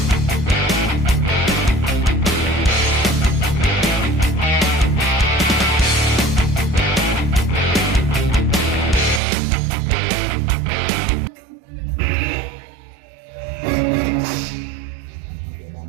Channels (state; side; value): drops out; left; at 9.2 s